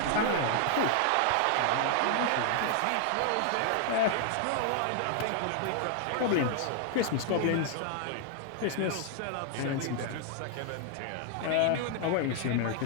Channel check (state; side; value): different; both; correlation 0.00